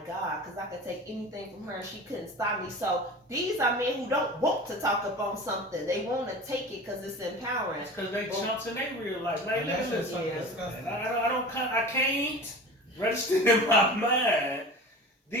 God because I could take anything from her and she couldn't stop me. So these are men who don't want to talk up on something. They want to take it because it's empowering. It's because they chumps in their real life. Like, And that look at shit's this. fucking Yeah. disgusting. And I can't register in my mind.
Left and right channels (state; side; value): normal; both; correlation 0.36